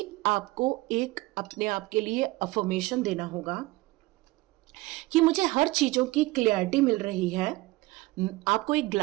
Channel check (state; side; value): quieter; left; 20.6 dB